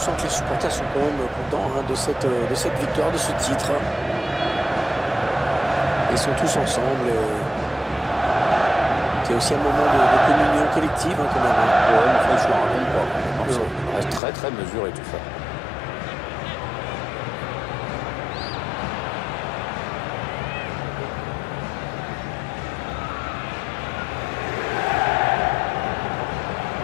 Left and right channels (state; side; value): drops out; right; at 14.2 s